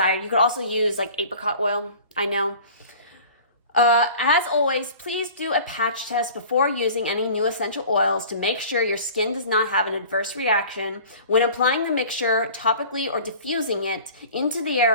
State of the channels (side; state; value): both; inverted; correlation -0.43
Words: you could also use like apricot oil. I know. As always, please do a patch test before using any new essential oils to make sure your skin does not have an adverse reaction. When applying the mixture topically or diffusing it into the